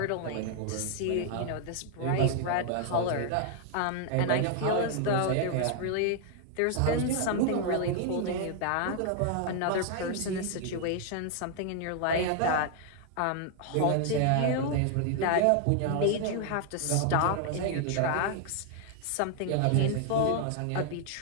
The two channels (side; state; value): both; different; correlation 0.00